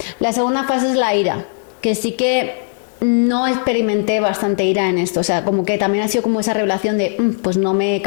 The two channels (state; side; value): silent; right; 59 dB below the other